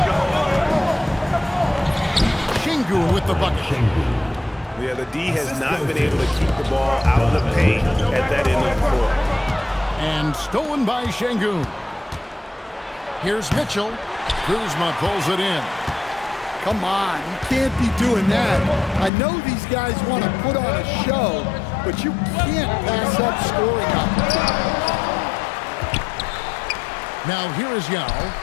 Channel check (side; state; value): right; drops out; at 19.1 s